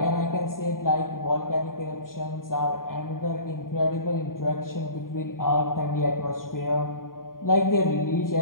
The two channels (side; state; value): right; late; 0.91 ms